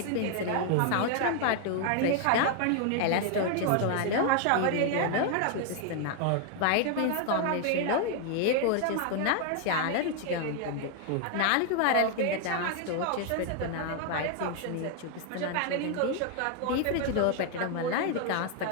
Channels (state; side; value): different; both; correlation 0.00